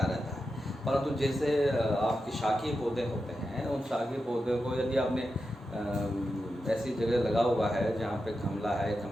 रहता है। परंतु जैसे आपके शाकीय पौधे होते हैं, उन शाकीय पौधों को यदि आपने ऐसी जगह लगा हुआ है जहाँ पे गमला है,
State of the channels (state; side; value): normal; both; correlation 0.89